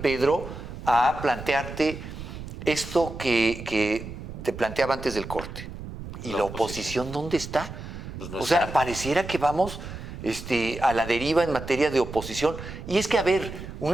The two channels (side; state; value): right; noise; rumble, 10 dB below the sound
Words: Pedro, a plantearte esto que te planteaba antes del corte. ¿Y la oposición dónde está? Pues no o sea, pareciera que vamos... a la deriva en materia de oposición. Y es que,